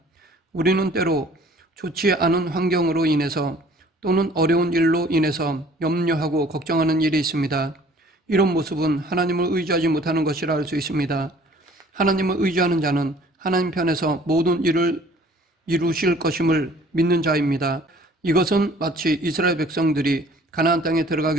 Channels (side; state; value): both; normal; correlation 0.53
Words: 우리는 때로 좋지 않은 환경으로 인해서 또는 어려운 일로 인해서 염려하고 걱정하는 일이 있습니다. 이런 모습은 하나님을 의지하지 못하는 것이라 할 수 있습니다. 하나님을 의지하는 자는 하나님 편에서 모든 일을 이루실 것임을 믿는 자입니다. 이것은 마치 이스라엘 백성들이 가나안 땅에